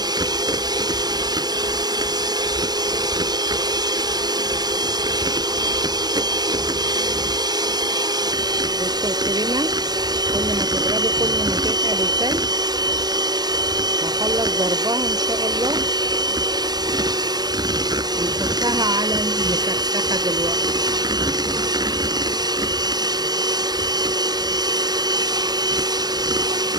الكريمه كل ما تضربي كل ما تتقل التلج. هخلص ضربها ان شاء الله ونحطها على المسخسخه دلوقتي.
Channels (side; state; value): left; late; 0.19 ms